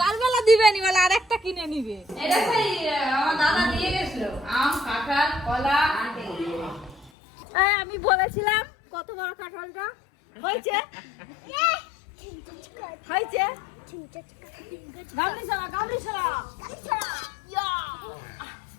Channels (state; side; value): drops out; right; at 7.1 s